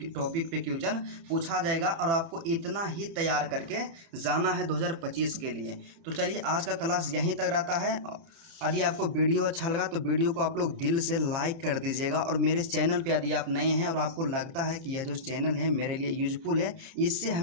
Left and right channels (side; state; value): left; late; 30 ms